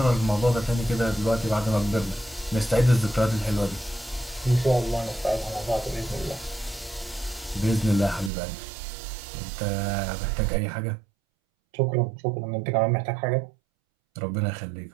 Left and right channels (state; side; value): drops out; left; at 8.3 s